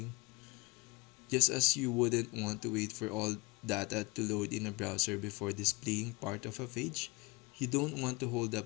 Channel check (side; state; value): right; quieter; 25.0 dB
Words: Just as you wouldn't want to wait for all data to load in a browser before displaying part of a page, you don't want to hold